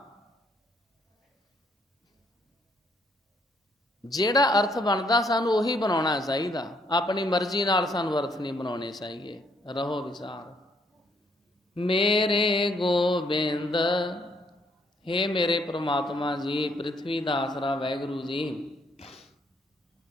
ਜਿਹੜਾ ਅਰਥ ਬਣਦਾ ਸਾਨੂੰ ਉਹੀ ਬਣਾਉਣਾ ਚਾਹੀਦਾ, ਆਪਣੀ ਮਰਜ਼ੀ ਨਾਲ ਸਾਨੂੰ ਅਰਥ ਨਹੀਂ ਬਣਾਉਣੇ ਚਾਹੀਏ। ਰਹੋ ਵਿਚਾਰ। ਮੇਰੇ ਗੋਬਿੰਦ, ਹੇ ਮੇਰੇ ਪ੍ਰਮਾਤਮਾ ਜੀ, ਪ੍ਰਿਥਵੀ ਦਾ ਆਸਰਾ ਵਾਹਿਗੁਰੂ ਜੀ,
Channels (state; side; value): normal; both; correlation 0.69